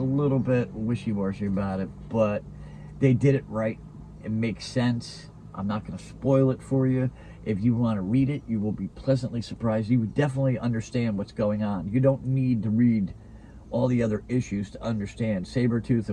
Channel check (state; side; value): identical; both; correlation 1.00